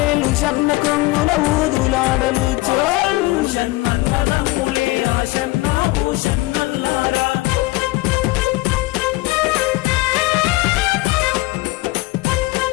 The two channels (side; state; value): right; quieter; 20.8 dB